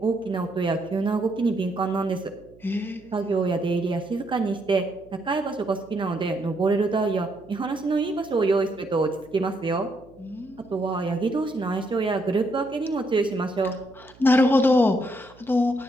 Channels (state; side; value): noise; right; hum, 25 dB below the sound